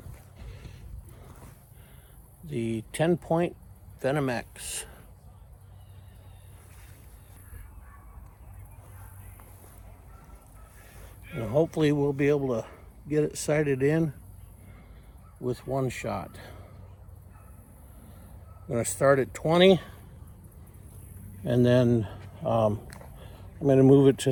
the 10-point VenomX. And hopefully we'll be able to get it sighted in with one shot. I'm going to start at 20 and then I'm going to move it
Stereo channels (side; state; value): both; identical; correlation 1.00